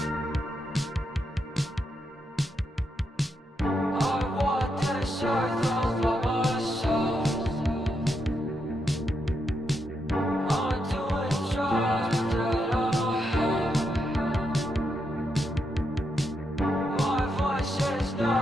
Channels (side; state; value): both; normal; correlation 0.82